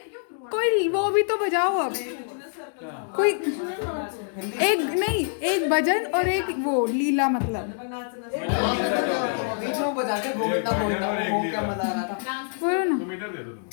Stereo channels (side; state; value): right; silent; digital silence